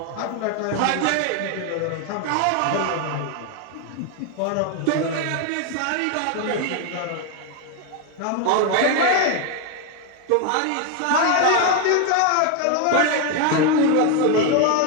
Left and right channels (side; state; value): both; different; correlation 0.01